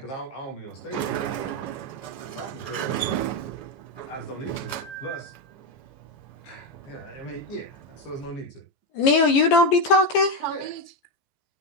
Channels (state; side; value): late; right; 15 ms